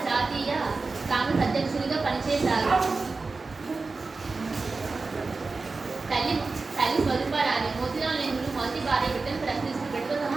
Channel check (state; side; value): quieter; left; 4.0 dB